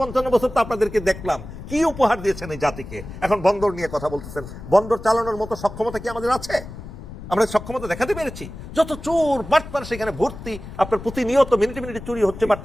55 বছর, তো আপনাদেরকে দেখলাম কি উপহার দিয়েছেন এই জাতিকে। এখন বন্দর নিয়ে কথা বলতেছেন, বন্দর চালানোর মতো সক্ষমতা কি আমাদের আছে? আমরা সক্ষমতা দেখাতে পেরেছি? যত চোর বাটপার সেখানে ভর্তি, আপনার প্রতিনিয়ত মিনিটে মিনিটে চুরি হচ্ছে,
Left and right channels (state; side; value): noise; left; rumble, 12 dB below the sound